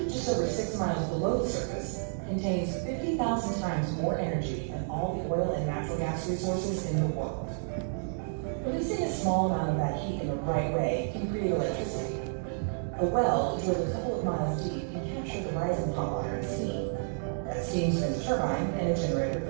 just over 6 miles below the surface contains 50,000 times more energy than all the oil and natural gas resources in the world. Releasing a small amount of that heat in the right way can create electricity. A well drilled a couple of miles deep can capture the rising hot water and steam. That steam spins a turbine and a generator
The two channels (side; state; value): left; silent; digital silence